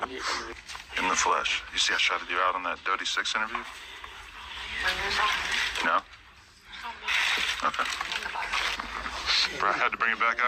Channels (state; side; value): identical; both; correlation 1.00